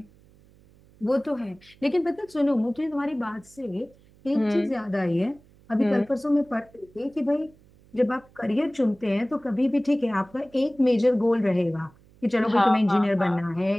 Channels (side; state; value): right; noise; hum, 28 dB below the sound